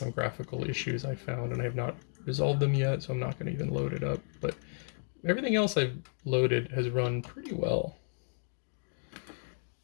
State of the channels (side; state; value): right; silent; 56 dB below the other